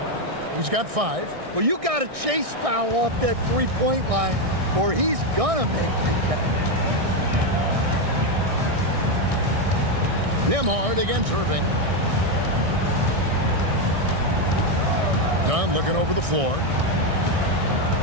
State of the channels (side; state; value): left; late; 1.6 ms